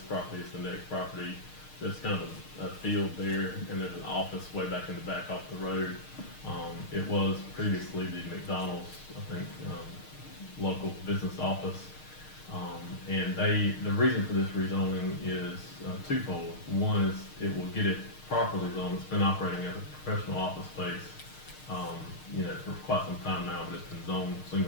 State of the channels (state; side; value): late; right; 6.5 ms